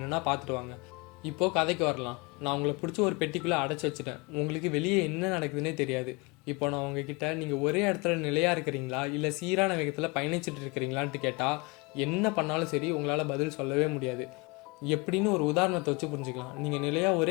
பார்த்துட்டு வாங்க. இப்போது கதைக்கு வரலாம். நான் உங்களை பிடிச்சி ஒரு பெட்டிக்குள்ளே அடைச்சி வச்சுட்டேன். உங்களுக்கு வெளியே என்ன நடக்குதுன்னே தெரியாது. இப்போ நான் உங்ககிட்ட நீங்கள் ஒரே இடத்துல நிலையாக இருக்கிறீங்களா இல்லை சீரான வேகத்தில் பயணிச்சுட்டு இருக்கிறீங்களான்ட்டு கேட்டால் என்ன பண்ணாலும் சரி உங்களால் பதில் சொல்லவே முடியாது. எப்படின்னு ஒரு உதாரணத்தை வச்சு புரிஞ்சுக்கலாம். நீங்கள் நிலையாக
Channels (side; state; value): right; quieter; 27.6 dB